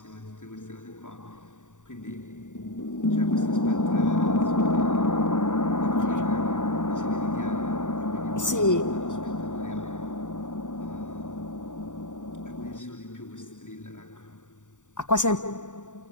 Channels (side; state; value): right; late; 0.86 ms